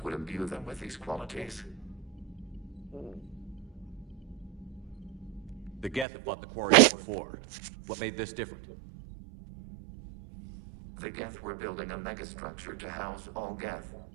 would imbue them with these qualities. The Geth have fought the Quarians before. What made this different? The Geth were building a megastructure to house all Geth,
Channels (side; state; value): left; drops out; at 6.1 s